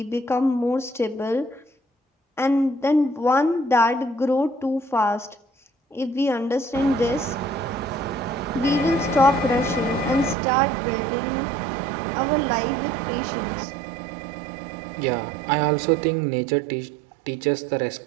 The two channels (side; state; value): left; drops out; at 10.4 s